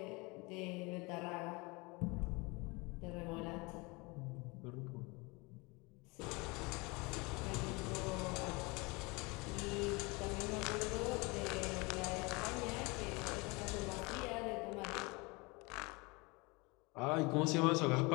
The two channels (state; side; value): quieter; right; 26.5 dB